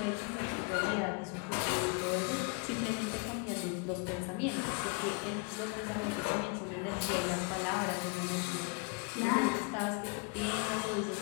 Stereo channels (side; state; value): right; quieter; 32.1 dB